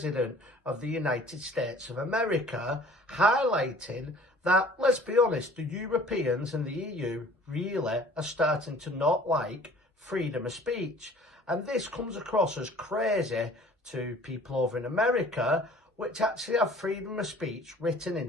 of the United States of America, highlighting that, let's be honest, the Europeans and the EU really are starting to not like freedom of speech. And this comes across as crazy to people over in America, which actually have freedom of speech written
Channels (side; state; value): both; normal; correlation 0.50